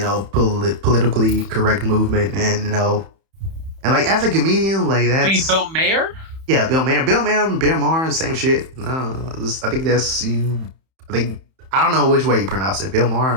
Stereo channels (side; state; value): left; late; 31 ms